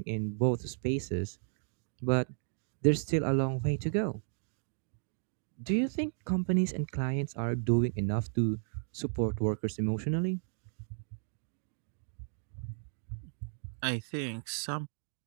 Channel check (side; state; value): left; silent; digital silence